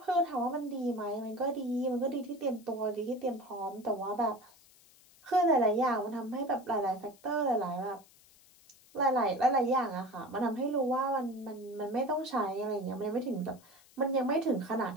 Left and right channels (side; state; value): left; noise; hiss, 27 dB below the sound